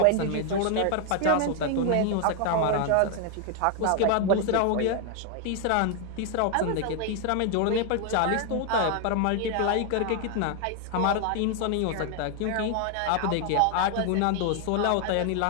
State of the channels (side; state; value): both; different; correlation 0.00